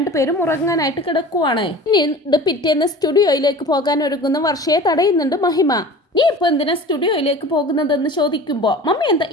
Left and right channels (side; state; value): both; normal; correlation 0.39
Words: ഉറങ്ങാനായിട്ട് കിടക്കുവാണ്. ഇനി പിറ്റേന്ന് സ്റ്റുഡിയോയിലേക്ക് പോകാൻ ഒരുങ്ങുന്ന വർഷയെ തടയുന്നുണ്ട് മഹിമ. നീ ഇപ്പൊ എന്തിനാ സ്റ്റുഡിയോയിലേക്ക് പോകുന്നതെന്ന് ചോദിക്കുമ്പോ മമ്മി എന്താ